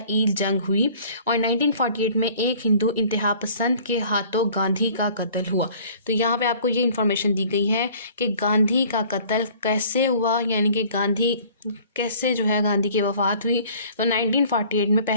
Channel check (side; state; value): both; inverted; correlation -0.52